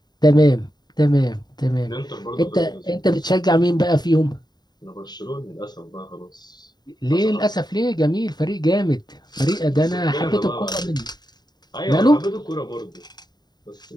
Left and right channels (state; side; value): late; right; 0.20 ms